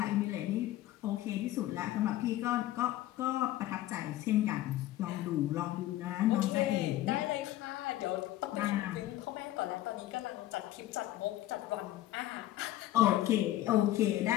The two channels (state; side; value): quieter; right; 14.7 dB